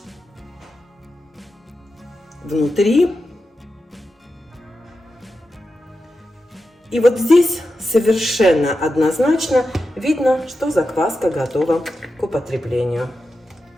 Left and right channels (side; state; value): both; normal; correlation 0.90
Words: внутри. И вот здесь совершенно однозначно видно, что закваска готова к употреблению.